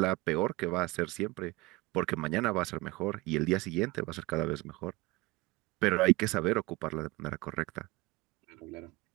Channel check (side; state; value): left; quieter; 22.0 dB